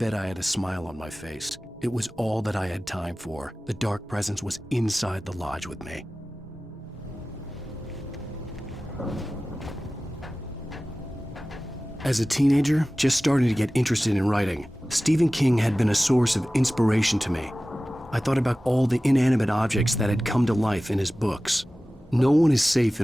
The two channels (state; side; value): normal; both; correlation 0.96